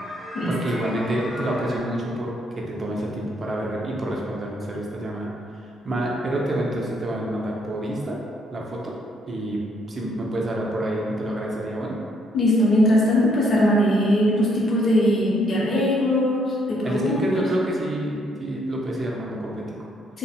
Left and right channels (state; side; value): normal; both; correlation 0.70